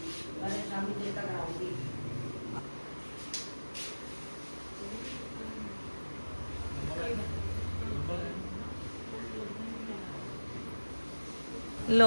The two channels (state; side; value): inverted; both; correlation -1.00